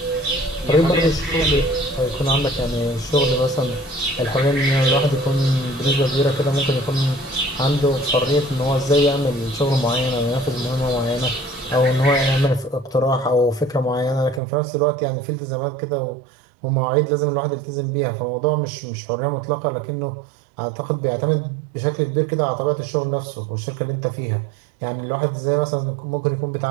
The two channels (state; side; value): drops out; left; at 14.4 s